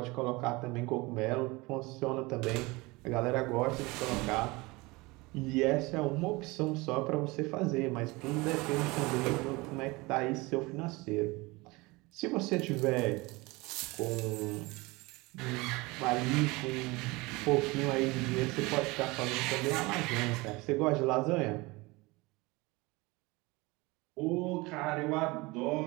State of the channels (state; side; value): quieter; left; 23.5 dB